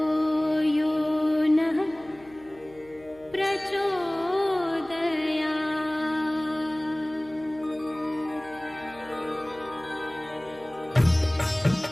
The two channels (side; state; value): left; noise; hum, 25 dB below the sound